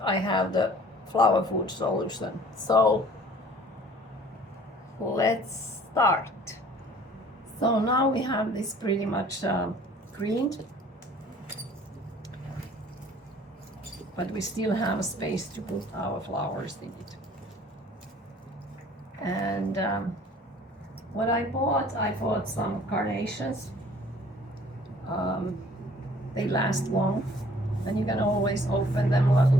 I have the flower food solution. So let's start. So now we have this pretty much greened, but we still have space to put our flowers in it. And what I bought some carnations. They last long, and you can always open them a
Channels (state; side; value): normal; both; correlation 0.53